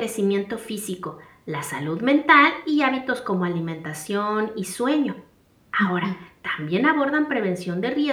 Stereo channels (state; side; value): identical; both; correlation 1.00